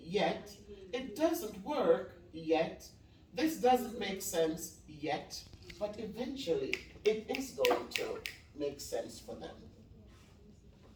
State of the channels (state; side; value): identical; both; correlation 1.00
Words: It doesn't work yet. This doesn't make sense yet. But eventually, it is going to make sense for them.